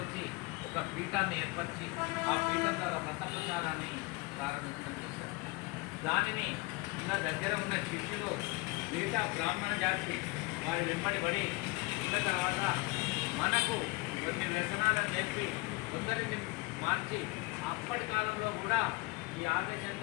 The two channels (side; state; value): right; quieter; 24.9 dB